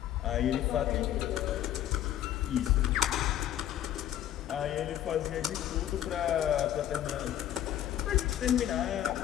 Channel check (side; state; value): right; quieter; 11.7 dB